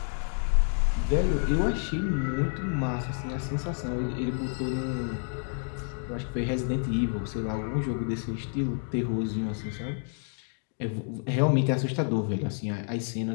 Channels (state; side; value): silent; right; 58 dB below the other